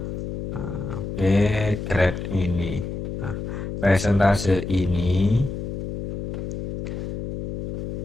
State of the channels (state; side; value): noise; left; hum, 6 dB below the sound